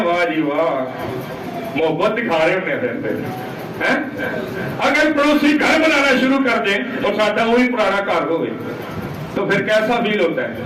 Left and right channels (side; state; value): both; identical; correlation 1.00